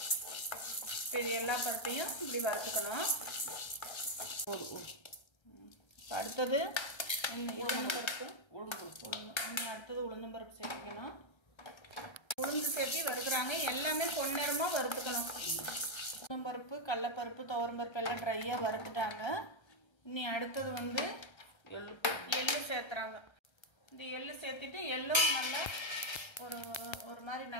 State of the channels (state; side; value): late; right; 1.3 ms